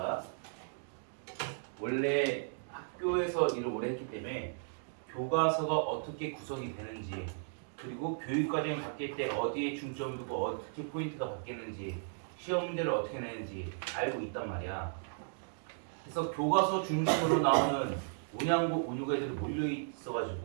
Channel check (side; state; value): left; silent; digital silence